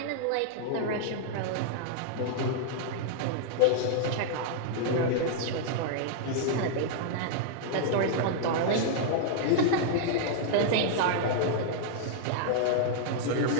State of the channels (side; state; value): both; different; correlation -0.01